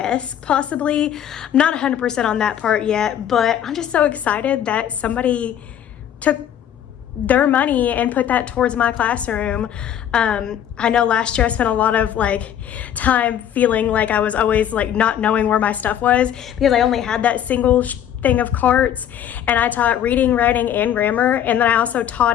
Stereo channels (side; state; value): right; quieter; 10.0 dB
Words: possibly. I'm not 100% on that part yet, but I'm just so excited that somebody took their money and put that towards my classroom. I know last year I spent a lot of like time feeling like I was always like not knowing where my stuff was because I only had that single thing of carts, and I taught reading, writing, and grammar, and then I also